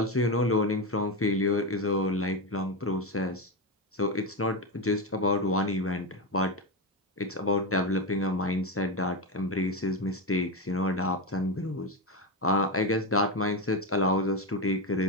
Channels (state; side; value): normal; both; correlation 0.13